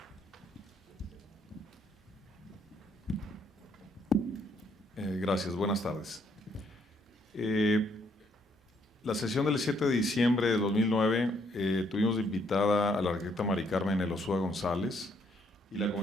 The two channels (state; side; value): normal; both; correlation 0.70